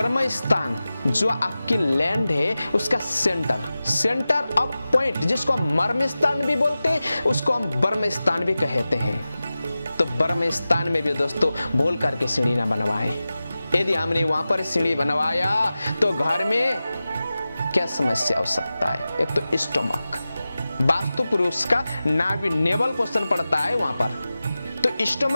स्थान जो आपकी लैंड है उसका सेंटर ऑफ पॉइंट, जिसको हम मर्म स्थान भी बोलते हैं, उसको हम ब्रह्म स्थान भी कहते हैं। तो ब्रह्म स्थान में भी दोस्तों भूल करके सीढ़ी ना बनवाएं। यदि हमने वहां पर सीढ़ी बनवाया तो घर में क्या समस्या हो सकता है, एक तो स्टोमक, वास्तु पुरुष का नाभि नेवल पोषण पड़ता है वहां पर, तो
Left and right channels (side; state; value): both; inverted; correlation -0.95